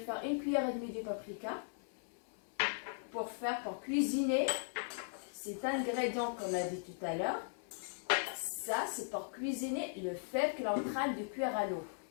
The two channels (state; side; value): silent; right; 52 dB below the other